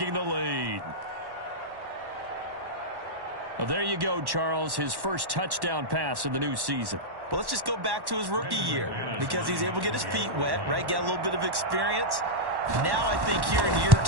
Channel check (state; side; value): late; left; 1.1 ms